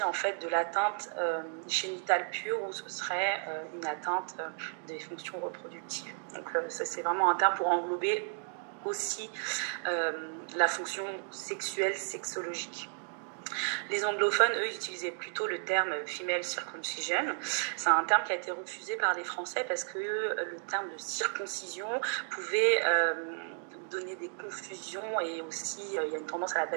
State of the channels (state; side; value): silent; left; 56 dB below the other